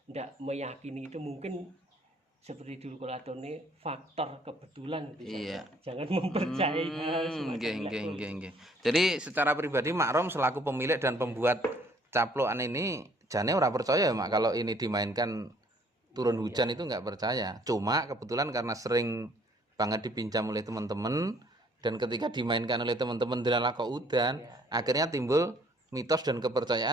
tidak meyakini itu, mungkin seperti dulu Kolatone faktor kebetulan gitu Iya. saja. Jangan mempercayai hal semacam itu. Nggih. Jadi secara pribadi Mak Rom selaku pemilik dan pembuat caplokan ini jane ora percaya ya, Mak, kalau ini dimainkan turun hujan itu nggak percaya. Cuma kebetulan karena sering banget dipinjam oleh teman-teman dan ketika dimainkan oleh teman-teman dilala kok udan, akhirnya timbul mitos dan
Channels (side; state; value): both; normal; correlation 0.61